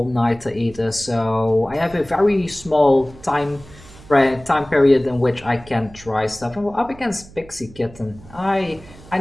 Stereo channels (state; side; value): noise; right; hum, 21 dB below the sound